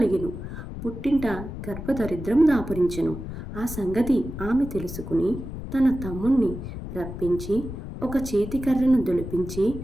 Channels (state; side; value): noise; left; rumble, 9 dB below the sound